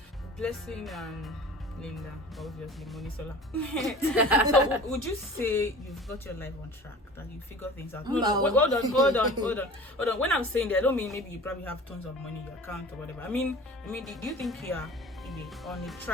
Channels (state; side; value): normal; both; correlation 0.41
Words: Blessing and Linda, obviously, Monisola. So would you say you've got your life on track, that you figure things out? No. Hold on. When I'm saying that, I don't mean maybe you probably have tons of money in your account or whatever. I mean, do you think you are on the